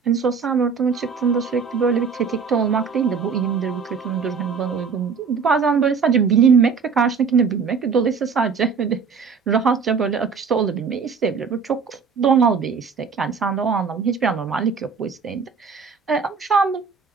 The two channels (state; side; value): quieter; left; 5.7 dB